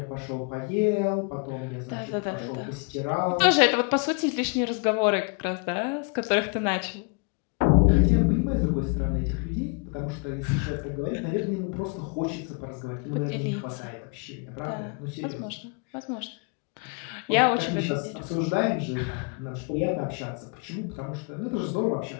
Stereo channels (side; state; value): right; quieter; 34.5 dB